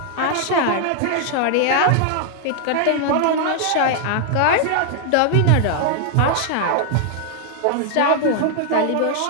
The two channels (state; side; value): different; both; correlation 0.00